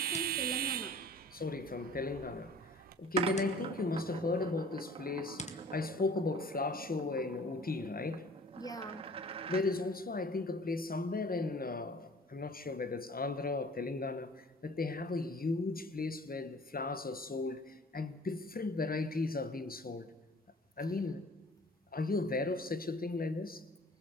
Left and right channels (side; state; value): both; normal; correlation 0.48